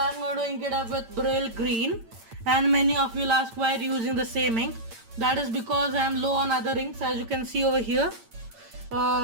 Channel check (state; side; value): late; left; 8.8 ms